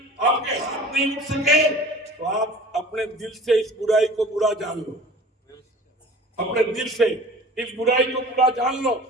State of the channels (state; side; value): normal; both; correlation 0.43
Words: آپ کے ہاتھ نہیں اٹھ سکے, تو آپ اپنے دل سے اس برائی کو برا جان لو. اپنے دل سے اس برائی کو برا جان لو.